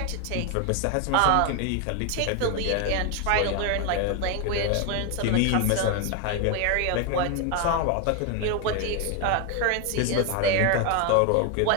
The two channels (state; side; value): different; both; correlation 0.01